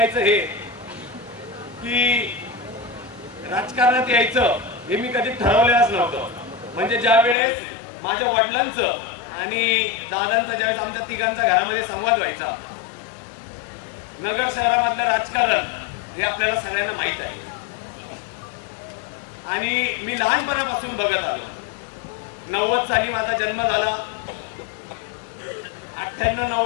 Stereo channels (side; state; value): right; drops out; at 7.4 s